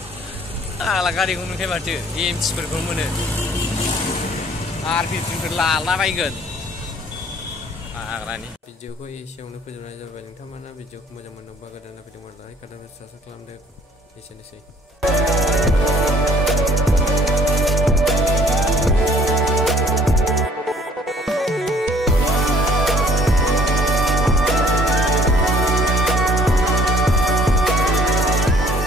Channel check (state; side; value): normal; both; correlation 0.56